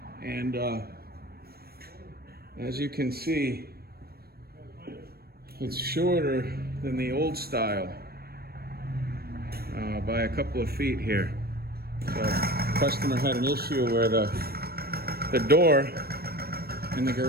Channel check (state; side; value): late; left; 0.45 ms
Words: And as you can see, it's shorter than the old style by a couple of feet here. So the customer had an issue where the door in the